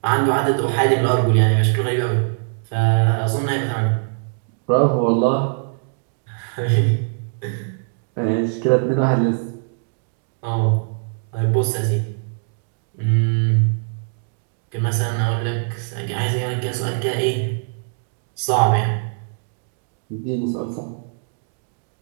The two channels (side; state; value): left; silent; digital silence